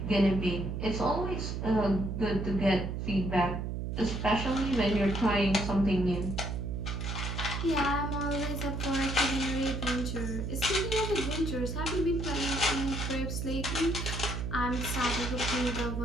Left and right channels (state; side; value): noise; right; hum, 3 dB below the sound